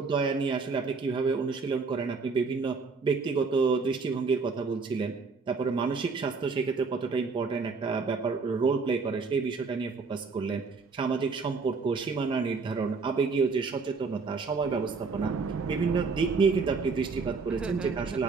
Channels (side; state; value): left; quieter; 4.6 dB